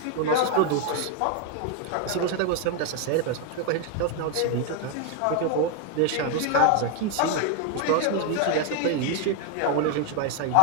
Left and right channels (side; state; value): both; different; correlation 0.01